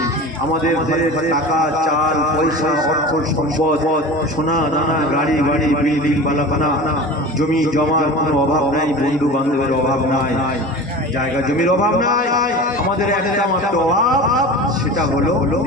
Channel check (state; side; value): normal; both; correlation 0.34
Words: আমাদের টাকা, চাল, পয়সা, অর্থ, সম্পদ, সোনা দানা, গাড়ি বিল্ডিং, বালাখানা, জমি জমার কোনো অভাব নাই, বন্ধু বান্ধবের অভাব নাই, জায়গা জমির অভাব নাই। আমাদের একটা মাত্র অভাব, সেটা হলো